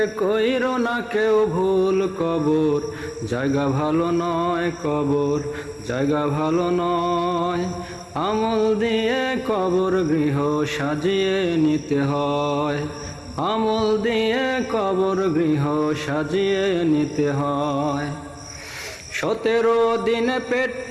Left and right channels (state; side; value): identical; both; correlation 1.00